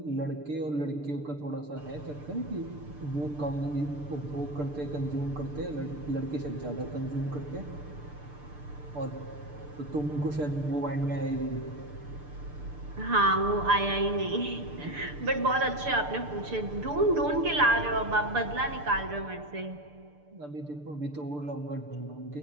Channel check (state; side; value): late; left; 6.8 ms